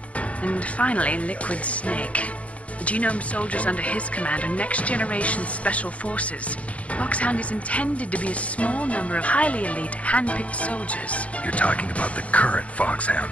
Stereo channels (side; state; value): right; late; 0.066 ms